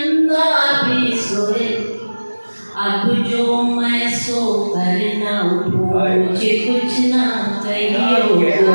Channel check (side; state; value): both; inverted; correlation -1.00